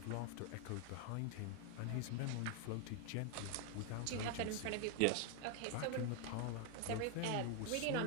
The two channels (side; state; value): both; different; correlation 0.00